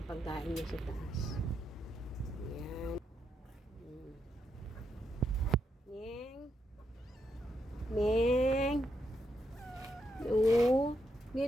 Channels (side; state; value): both; normal; correlation 0.81